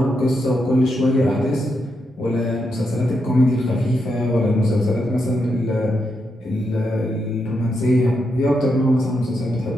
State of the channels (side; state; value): both; normal; correlation 0.83